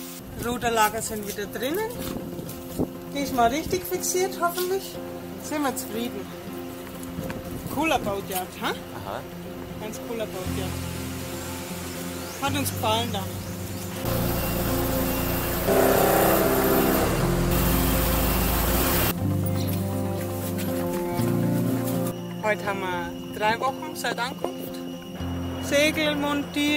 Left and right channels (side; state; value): both; identical; correlation 1.00